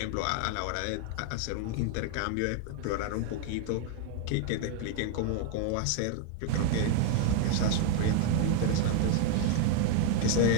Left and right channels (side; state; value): both; different; correlation 0.00